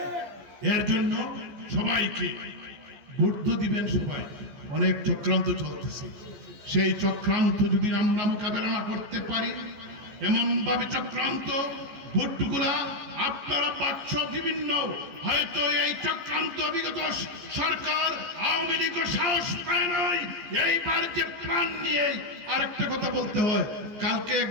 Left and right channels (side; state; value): left; late; 14 ms